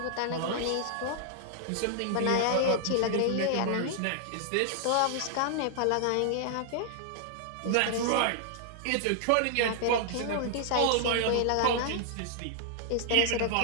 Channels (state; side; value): different; both; correlation -0.01